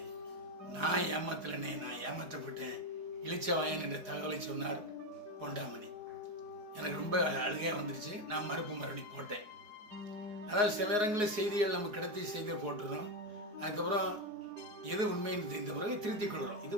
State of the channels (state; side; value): late; left; 4.8 ms